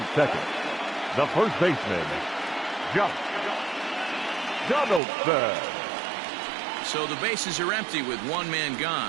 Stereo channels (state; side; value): drops out; left; at 5.0 s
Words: second, the first baseman, Josh Donaldson. So the bases are empty with 1 man